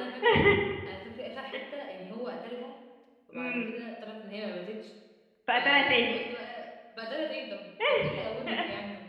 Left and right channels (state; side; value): identical; both; correlation 1.00